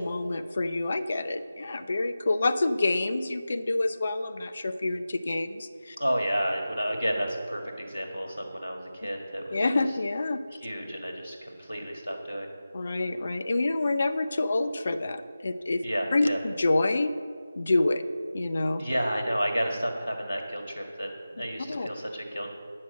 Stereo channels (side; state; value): both; inverted; correlation -0.95